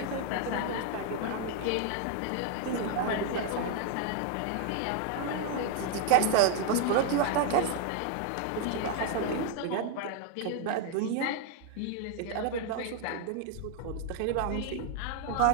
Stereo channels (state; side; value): different; both; correlation 0.01